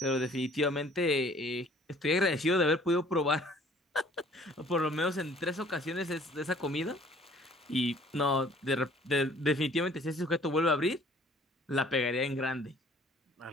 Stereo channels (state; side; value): normal; both; correlation 0.55